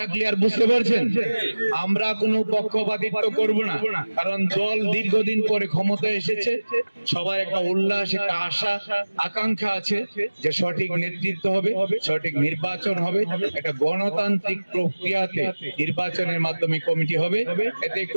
ক্লিয়ার, বুঝতে পারছেন? আমরা কোনো পক্ষপাতিত্ব করব না, কারণ দল দীর্ঘদিন পরে ক্ষমতায় এসেছে, সবার একটা উল্লাস, একটা আশা আকাঙ্ক্ষা আছে যে সঠিক নেতৃত্ব হবে, সঠিক নির্বাচন হবে, একটা গণতান্ত্রিক প্রক্রিয়াতে নির্বাচনের মাধ্যমে কমিটি হবে, এতে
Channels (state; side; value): inverted; both; correlation -1.00